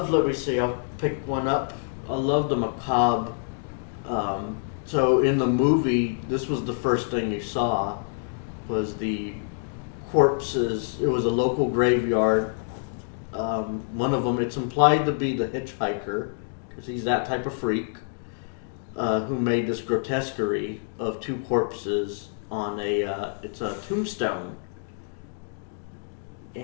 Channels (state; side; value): silent; right; digital silence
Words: let me see, I'll pick one up. I love the macabre. So in the movie, this was the first thing you saw, was the corpses. It was a local graveyard One of them, it's implied to be the hitchhiker, because he's that type of freak, who made this grotesquerie of two corpses on it's a tombstone.